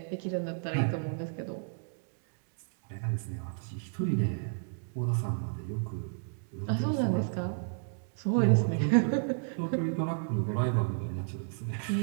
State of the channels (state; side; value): silent; left; 57 dB below the other